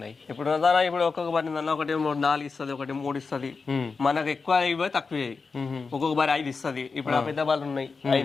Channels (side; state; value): right; quieter; 4.6 dB